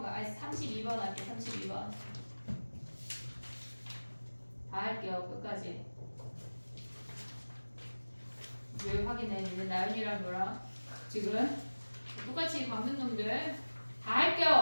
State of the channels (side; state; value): both; inverted; correlation -1.00